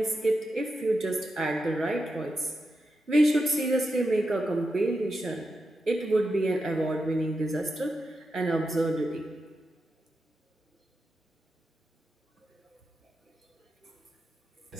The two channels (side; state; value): both; normal; correlation 0.87